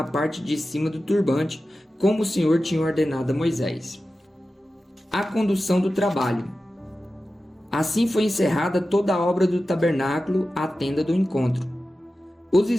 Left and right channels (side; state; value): both; normal; correlation 0.94